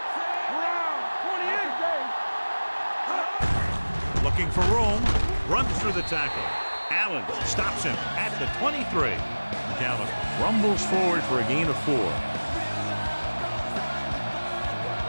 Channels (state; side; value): inverted; both; correlation -1.00